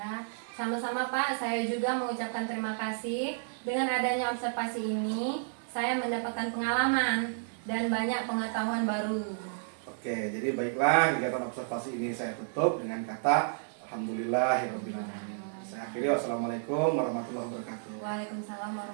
sama-sama Pak, saya juga mengucapkan terima kasih. Dengan adanya observasi ini, saya mendapatkan pengalaman dan banyak pengetahuan baru. Oke, jadi baiklah, kegiatan observasi ini saya tutup dengan kata Alhamdulillahirrahmanirrahim. Saya akhiri, wassalamualaikum warahmatullahi wabarakatuh. Waalaikumsalam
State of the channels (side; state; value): left; silent; 57 dB below the other